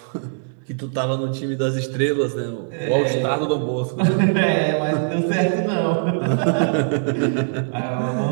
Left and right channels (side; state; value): left; silent; digital silence